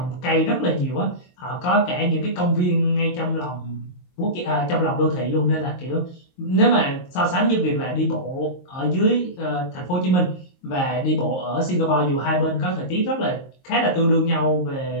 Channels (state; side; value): late; right; 22 ms